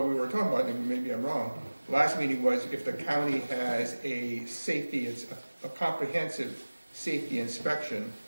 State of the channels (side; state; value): both; inverted; correlation -1.00